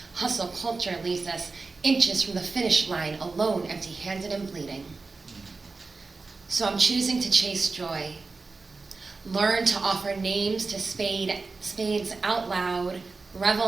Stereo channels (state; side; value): quieter; left; 4.0 dB